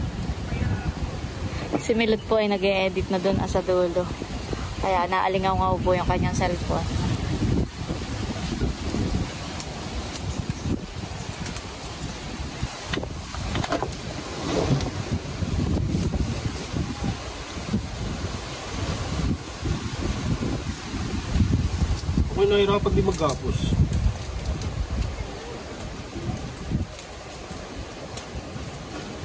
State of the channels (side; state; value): both; identical; correlation 1.00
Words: Si Milot po ay nag-e-edit na doon sa dulo. Kaya naalingaw-ngaw po yung kanyang cellphone. Ako'y nahirapan di magkapos.